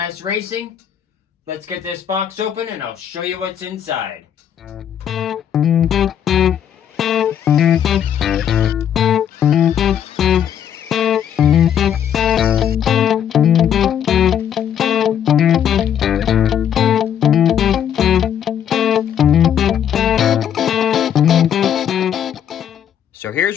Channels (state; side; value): quieter; right; 9.3 dB